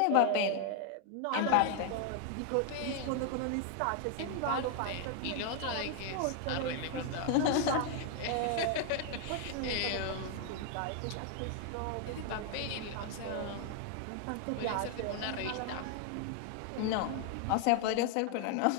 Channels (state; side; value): different; both; correlation 0.00